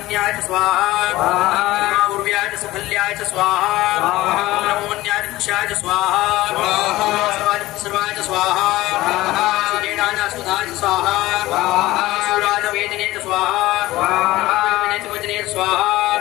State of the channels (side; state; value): right; quieter; 17.5 dB